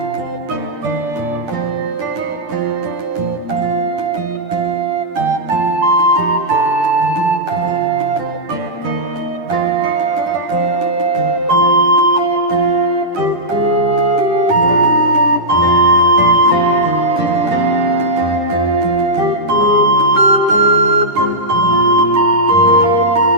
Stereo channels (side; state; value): left; late; 10 ms